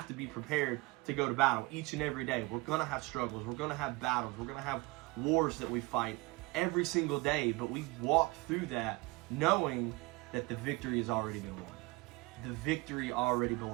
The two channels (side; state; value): left; quieter; 23.7 dB